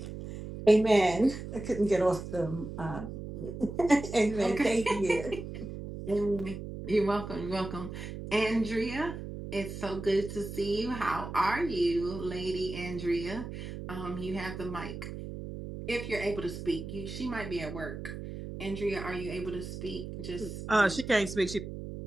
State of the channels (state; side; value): noise; right; hum, 8 dB below the sound